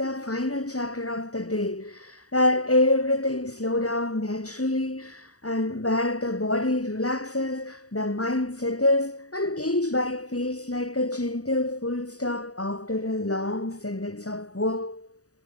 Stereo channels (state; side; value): late; right; 0.66 ms